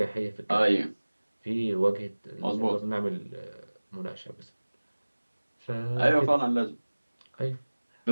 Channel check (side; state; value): both; inverted; correlation -1.00